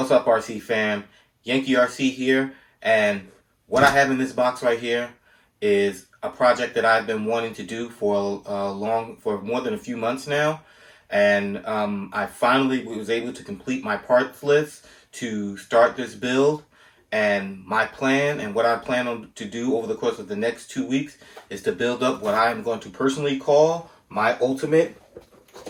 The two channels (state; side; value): identical; both; correlation 1.00